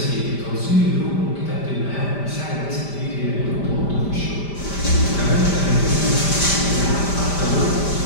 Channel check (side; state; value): right; late; 5.1 ms